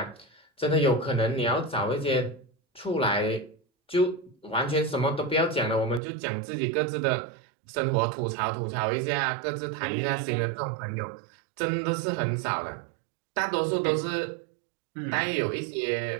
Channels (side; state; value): left; drops out; at 6.0 s